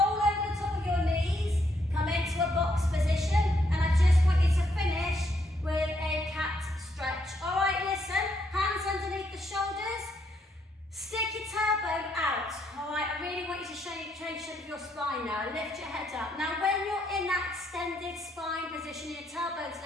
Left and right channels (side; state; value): both; normal; correlation 0.75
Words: over the top of your knees. Come into a box position. And I just want you to finish with a cat stretch. All right, listen. Hands underneath the shoulders. Stick your tailbone out. All right, I really want you to change the shape of your spine now. Lift your head up. Now, when you're in that extended spine position, your tailbone's